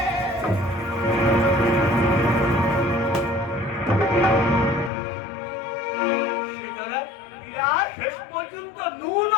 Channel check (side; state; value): right; drops out; at 4.9 s